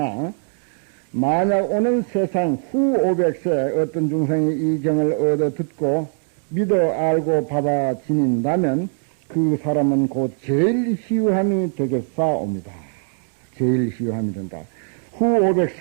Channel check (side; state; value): left; silent; 57 dB below the other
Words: 만약 오는 세상 후 500세 어떤 중생이 이 경을 얻어 듣고 믿어 알고 받아 지닌다면 그 사람은 곧 제일 희유함이 되겠사옵니다. 제일 희유함이 된다. 후